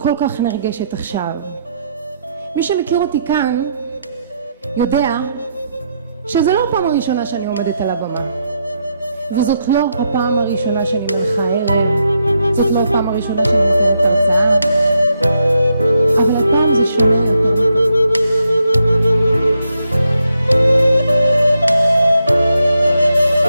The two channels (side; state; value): both; inverted; correlation -0.80